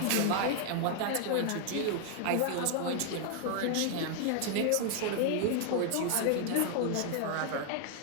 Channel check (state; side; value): different; both; correlation 0.00